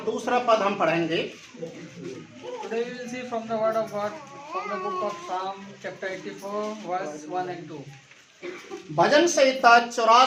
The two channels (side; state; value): both; identical; correlation 1.00